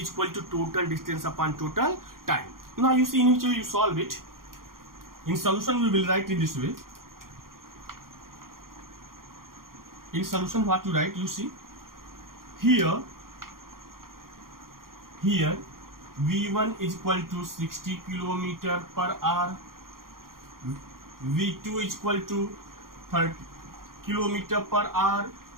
equal to total distance upon total time. Now you see in which way you solve it. In solution we will write in this way. In solution what you write, you see here v1 is equal to 60 km per hour, v2 is equal to 30 km per hour,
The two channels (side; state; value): left; late; 0.92 ms